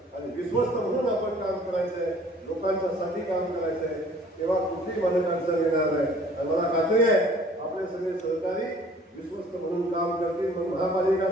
आणि विश्वस्त म्हणून आपण काम करायचंय, लोकांच्या साठी काम करायचंय. तेव्हा कुठली मदत अडचण येणार नाही. आणि मला खात्री आहे आपले सगळे सहकारी विश्वस्त म्हणून काम करतील. मग महापालिका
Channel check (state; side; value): normal; both; correlation 0.53